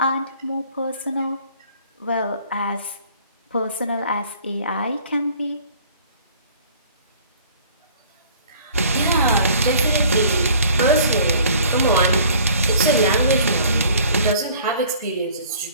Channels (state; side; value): inverted; both; correlation -0.53